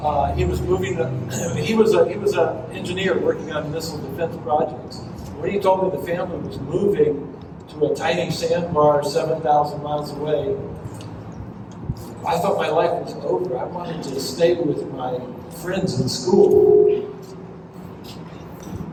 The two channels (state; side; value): identical; both; correlation 1.00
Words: he was moving, he was an engineer working on missile defense projects. When he told me the family was moving to a tiny sandbar 7,000 miles away, I thought my life was over. I wanted to stay with my friends in school.